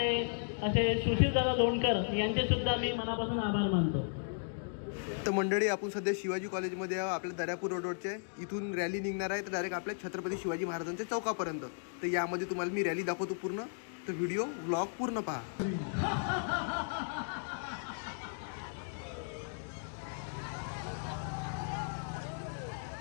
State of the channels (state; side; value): silent; right; digital silence